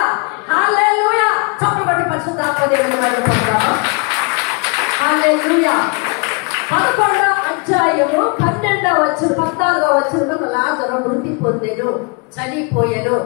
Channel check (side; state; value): right; quieter; 32.2 dB